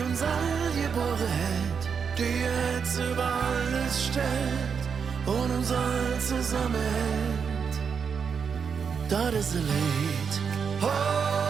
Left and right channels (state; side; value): quieter; left; 6.4 dB